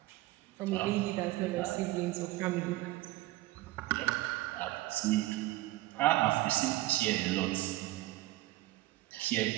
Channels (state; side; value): quieter; left; 17.7 dB